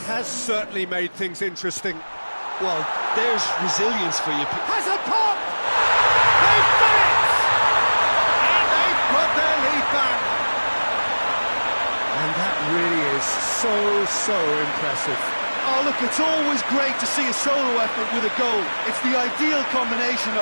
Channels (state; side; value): inverted; both; correlation -1.00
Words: has certainly made things interesting. Well, there's resilience for you. Has a pop! They've done it! And they've put their lead back. And that really is so impressive. Oh, look, it's always great to see a solo effort with a goal. It's the ideal combination